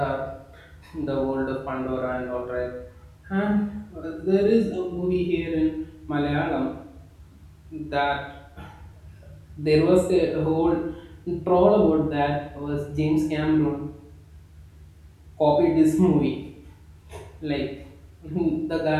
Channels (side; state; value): both; identical; correlation 1.00